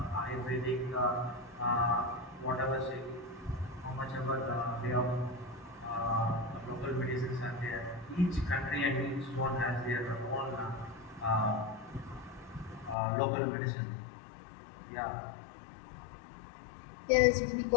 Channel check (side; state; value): right; drops out; at 13.0 s